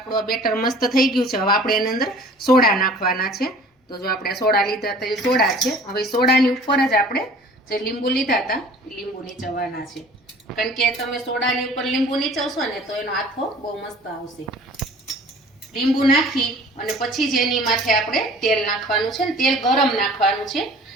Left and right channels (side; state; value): both; normal; correlation 0.48